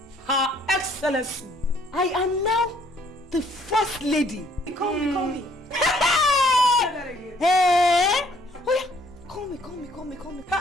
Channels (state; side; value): normal; both; correlation 0.63